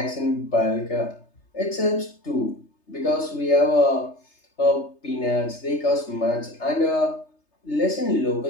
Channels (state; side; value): late; right; 3.3 ms